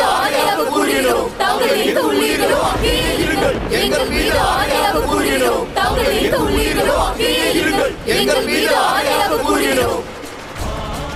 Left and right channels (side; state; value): both; identical; correlation 1.00